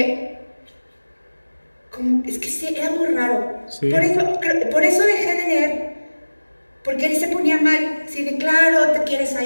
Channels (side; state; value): both; inverted; correlation -1.00